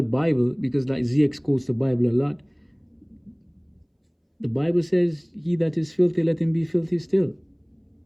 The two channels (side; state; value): both; identical; correlation 1.00